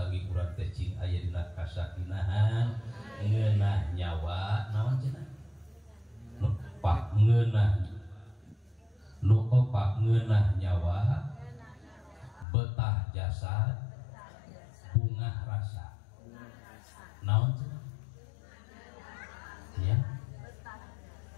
urang teh cing aya dina kasakinahan ngeunah nyawa naon cenah pak ngeunah nu opak ngeunah nyawa betah jasad bungah rasa naon cenah ya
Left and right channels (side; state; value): right; drops out; at 12.5 s